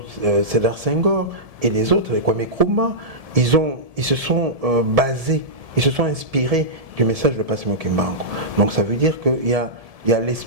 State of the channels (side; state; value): left; late; 1.7 ms